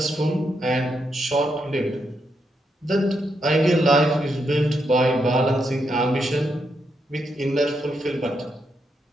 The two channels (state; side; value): normal; both; correlation 0.81